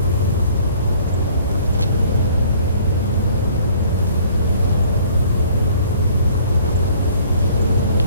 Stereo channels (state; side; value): inverted; both; correlation -0.55